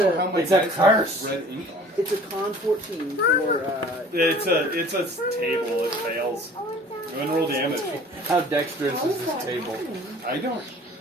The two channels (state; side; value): normal; both; correlation 0.48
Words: How my It's a dice have curse. red ink on it. it's a con 14 for. It's a table. It fails. Go ahead and roll damage. How dexterous How is is this that table? happening? I don't.